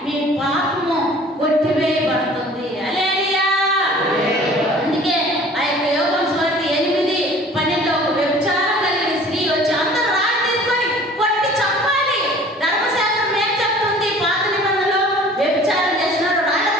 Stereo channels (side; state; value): both; normal; correlation 0.48